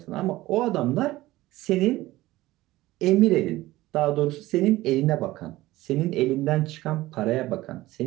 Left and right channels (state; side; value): quieter; left; 17.5 dB